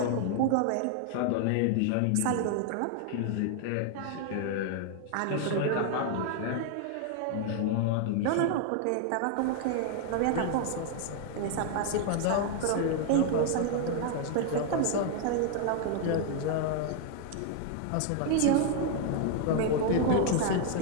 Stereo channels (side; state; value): both; different; correlation 0.00